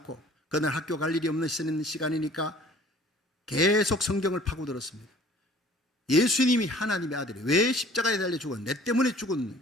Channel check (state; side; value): normal; both; correlation 0.51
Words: 그날 학교 갈 일이 없는 시간이니까 계속 성경을 파고들었습니다. 예수님이 하나님의 아들이 왜 십자가에 달려 죽어? 내 때문에 죽은.